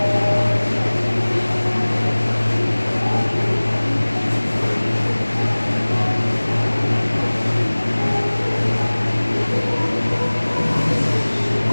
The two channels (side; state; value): both; inverted; correlation -1.00